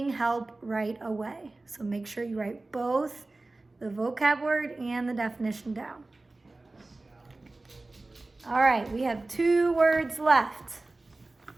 help right away. So make sure you write both the vocab word and the definition down. All right, we have 2 words left.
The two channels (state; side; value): quieter; left; 3.1 dB